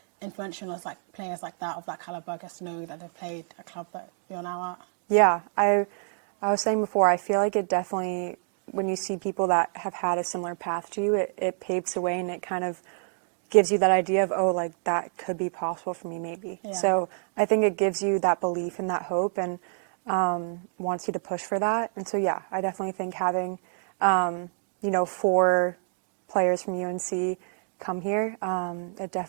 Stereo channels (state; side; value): silent; left; digital silence